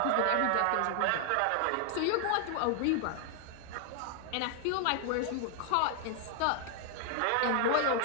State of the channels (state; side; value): different; both; correlation 0.00